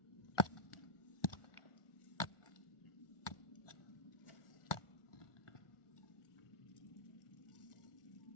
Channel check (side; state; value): right; late; 1.4 ms